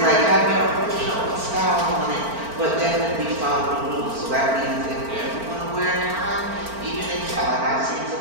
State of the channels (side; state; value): left; late; 4.4 ms